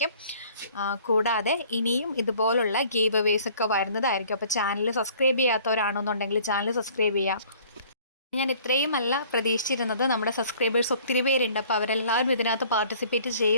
കൂടാതെ ഇനിയും ഇതുപോലുള്ള ഗീവ് അവേസ് ഒക്കെ വരുന്നതായിരിക്കും. അപ്പോൾ ചാനൽ സബ്സ്ക്രൈബ് ചെയ്യാത്തവരാണെന്നുണ്ടെങ്കിൽ ചാനൽ സബ്സ്ക്രൈബ് ചെയ്യുക. ഞാൻ ഇത്രയുമല്ല പ്രതീക്ഷിച്ചിരുന്നത്. നമ്മുടെ സബ്സ്ക്രൈബേഴ്സ് ഒത്തിരി പേരുണ്ട്. അപ്പോൾ അവരെല്ലാവരും ഇതിനകത്ത് പാർട്ടിസിപ്പേറ്റ്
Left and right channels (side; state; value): both; inverted; correlation -0.54